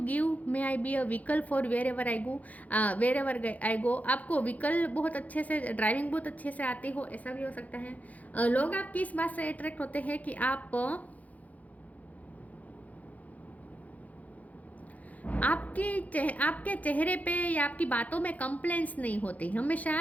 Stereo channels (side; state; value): right; late; 0.075 ms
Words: may I be a vehicle for wherever I go. आपको व्हीकल बहुत अच्छे से, ड्राइविंग बहुत अच्छे से आती हो, ऐसा भी हो सकता है। लोग आपकी इस बात से अट्रैक्ट होते हैं कि आपके चेहरे पे या आपकी बातों में कंप्लेंट्स नहीं होती, हमेशा